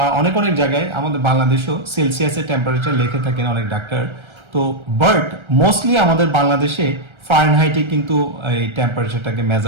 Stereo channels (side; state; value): left; late; 1.3 ms